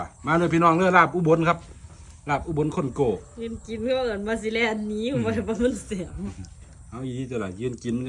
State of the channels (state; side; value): identical; both; correlation 1.00